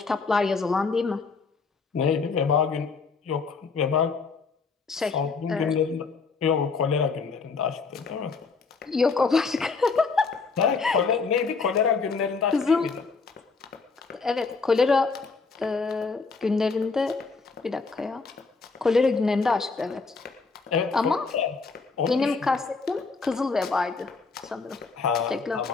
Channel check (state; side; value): quieter; right; 4.6 dB